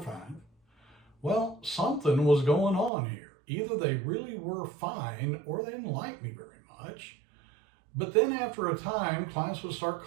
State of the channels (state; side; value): drops out; left; at 2.9 s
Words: Well, something was going on here. Either they really were fine or they didn't like me very much. But then after a time, clients would start